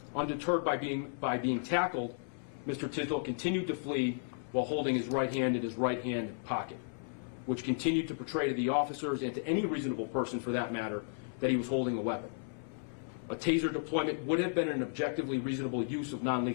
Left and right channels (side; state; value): right; silent; 55 dB below the other